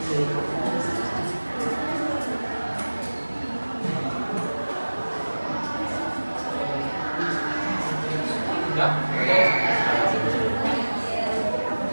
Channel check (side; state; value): both; inverted; correlation -1.00